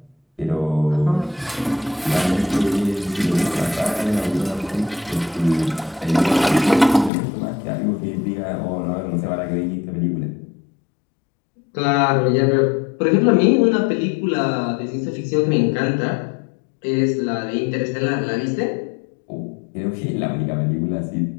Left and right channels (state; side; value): drops out; right; at 7.1 s